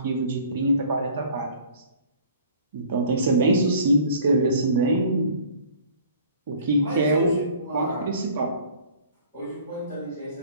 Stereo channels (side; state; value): both; inverted; correlation -0.50